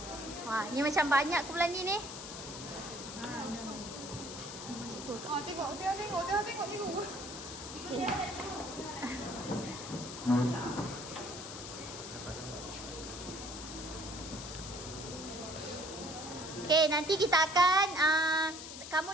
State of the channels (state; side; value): noise; left; hiss, 10 dB below the sound